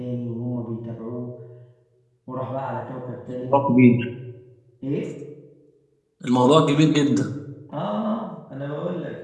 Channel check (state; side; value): identical; both; correlation 1.00